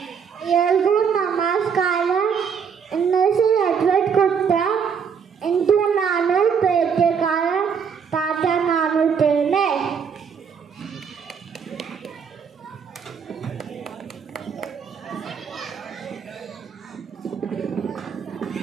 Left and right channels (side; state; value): left; quieter; 6.7 dB